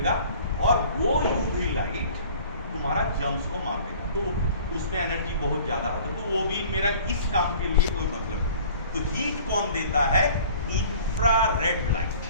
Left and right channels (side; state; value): both; inverted; correlation -0.48